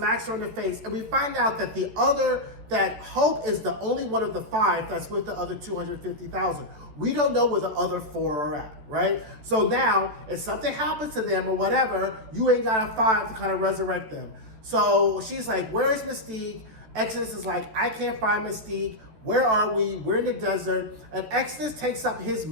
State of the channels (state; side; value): late; left; 13 ms